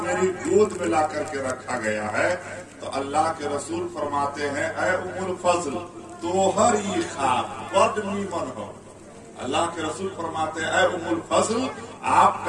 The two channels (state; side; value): identical; both; correlation 1.00